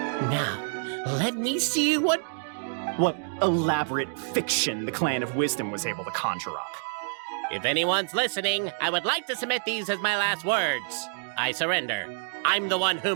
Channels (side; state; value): left; silent; digital silence